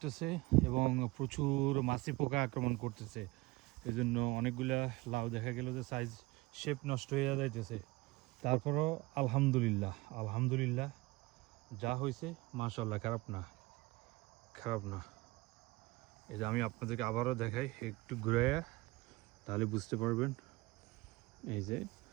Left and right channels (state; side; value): quieter; left; 21.8 dB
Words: এবং প্রচুর মাছি পোকা আক্রমণ করতেছে। এই জন্য অনেকগুলা লাউ দেখা গেল যে সাইজ শেপ নষ্ট হয়ে যাইতেছে। তারপরও আলহামদুলিল্লাহ আলহামদুলিল্লাহ, যা হয়েছে মাশাআল্লাহ, খারাপ না খারাপ না। এই যে আমি আপনাদেরকে আবারও দেখাই, একটু ঘুরাইয়া, তাহলে বুঝতে পারবেন। এই যে